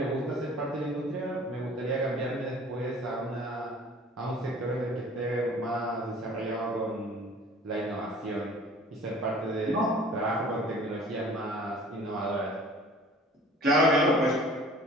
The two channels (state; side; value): normal; both; correlation 0.48